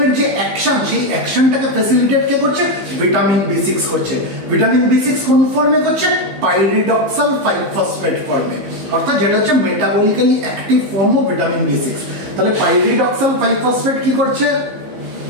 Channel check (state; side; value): late; left; 15 ms